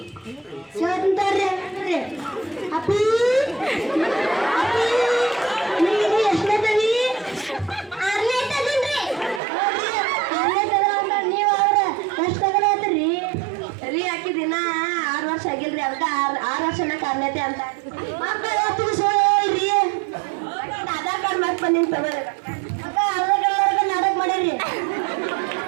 ತೋರಿ ಅಪ್ಪಿ ನೀವು ಎಷ್ಟನೇದವಿ? 6ನೇ ತಗೊಂಡ್ರಿ. ನೀವು ಅವ್ರ ಎಷ್ಟು ತಗೊಳತ್ರಿ ರೀ? ಆಕಿ ದಿನ 6 ವರ್ಷ ಆಗಿಲ್ರಿ. ಅದಕ್ಕೆ 6 ವರ್ಷನ ಕಾರ್ನೇತೆ ಅಂತ ಮಕ್ಕಳು ಸೋಳ್ರಿ. ಆಧಾರ್ ಕಾರ್ಡ್ ಮತ್ತೆ ಬಂದಿನ ತಗೋರಿ. ನಾಟಕ ಮಾಡಿರಿ.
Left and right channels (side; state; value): left; drops out; at 9.4 s